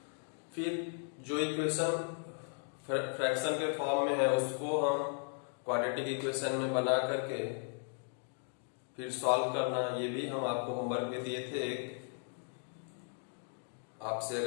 फिर जो इक्वेशन फ्रैक्शन के फॉर्म में है उसको हम क्वाड्रेटिक इक्वेशन में बना करके फिर सॉल्व करना, ये भी हम आपको होमवर्क में दिए थे। आपसे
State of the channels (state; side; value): silent; right; 54 dB below the other